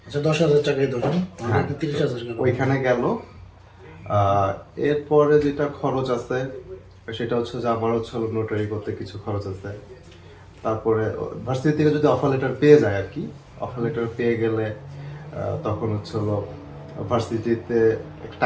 আচ্ছা, 10,000 টাকাই ধরুন, হ্যাঁ, 30,000 গেল। ওইখানে গেল। এরপরে যেটা খরচ আছে সেটা হচ্ছে যে আমার হচ্ছে নোটারি করতে কিছু খরচ আছে। তারপরে ভার্সিটি থেকে যদি অফার লেটার পেয়ে যায় আর কি, অফার লেটার পেয়ে গেলে তখন হচ্ছে হলো ভার্সিটিতে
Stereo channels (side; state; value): both; identical; correlation 1.00